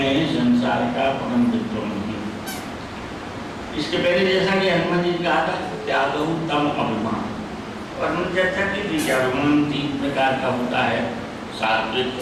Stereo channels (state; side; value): identical; both; correlation 1.00